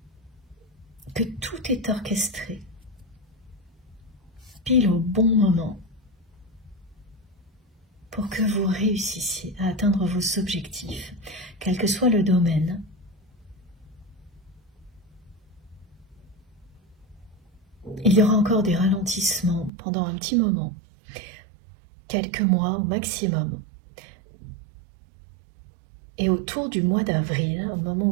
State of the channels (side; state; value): left; drops out; at 19.7 s